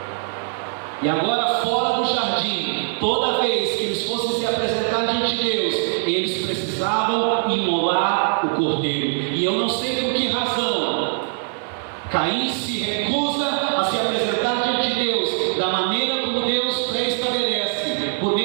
E agora, fora do jardim, toda vez que eles fossem se apresentar diante de Deus, eles precisavam imolar o cordeiro. E eu não sei por que razão Caim se recusa a se apresentar diante de Deus da maneira como Deus pré-estabelece, por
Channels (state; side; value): silent; left; 59 dB below the other